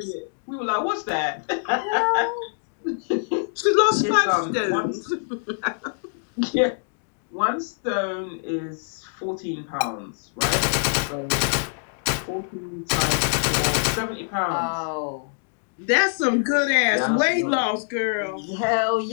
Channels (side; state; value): right; silent; digital silence